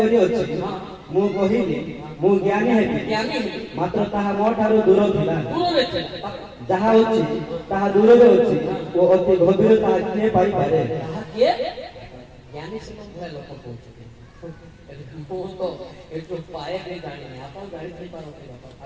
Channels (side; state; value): both; identical; correlation 1.00